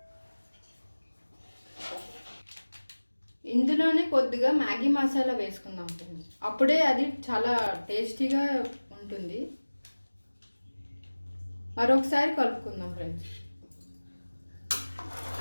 ఇందులోనే కొద్దిగా మ్యాగీ మసాలా వేసుకుందాం ఫ్రెండ్స్, అప్పుడే అది చాలా టేస్టీగా ఉంటుంది. మరొకసారి కలుపుకుందాం ఫ్రెండ్స్.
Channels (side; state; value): both; inverted; correlation -1.00